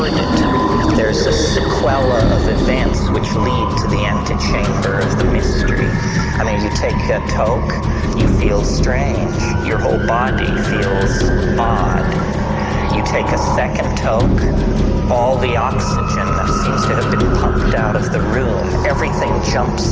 it. There's a sequela of events which lead to the antechamber of the mystery. I mean, you take a toke, you feel strange. Your whole body feels odd. You take a second toke, all the oxygen that seems to have been pumped out of the room, everything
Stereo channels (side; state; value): both; identical; correlation 1.00